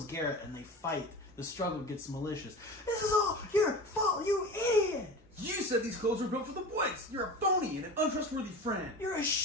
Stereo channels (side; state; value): both; normal; correlation 0.33